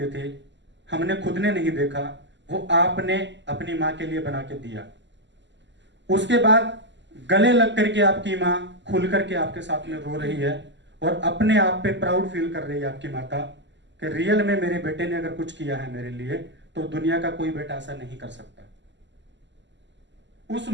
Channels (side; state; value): left; late; 0.53 ms